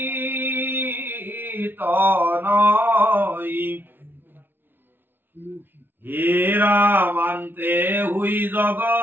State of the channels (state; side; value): late; left; 0.099 ms